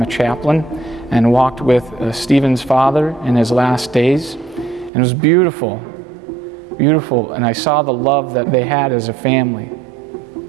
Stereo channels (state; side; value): drops out; left; at 4.9 s